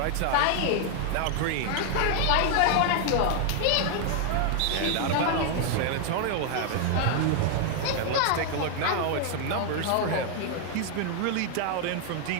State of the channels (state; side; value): different; both; correlation 0.00